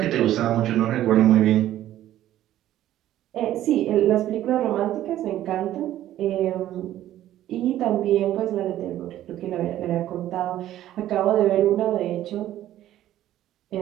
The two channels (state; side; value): quieter; left; 13.0 dB